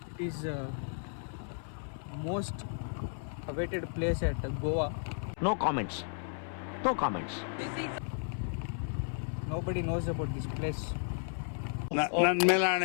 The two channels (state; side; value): silent; right; 55 dB below the other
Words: It is most awaited place at Goa. No comments. No comments. Nobody knows about this place. ನನ್ನ ಮೇಲೆ